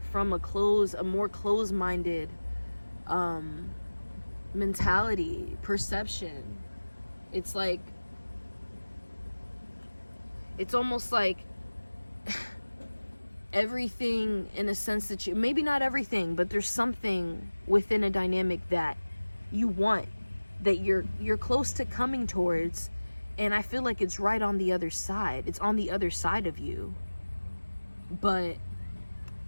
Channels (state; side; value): inverted; both; correlation -1.00